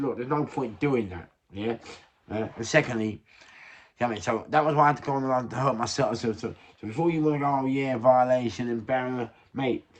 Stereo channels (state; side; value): identical; both; correlation 1.00